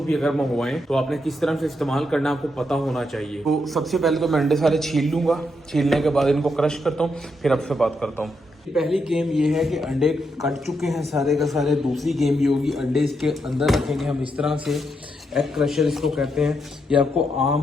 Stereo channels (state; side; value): normal; both; correlation 0.81